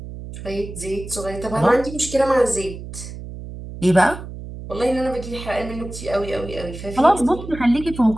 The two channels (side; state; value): right; noise; hum, 11 dB below the sound